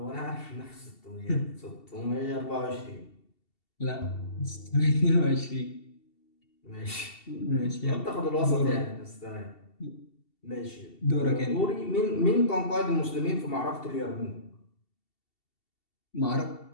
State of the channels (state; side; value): late; right; 2.7 ms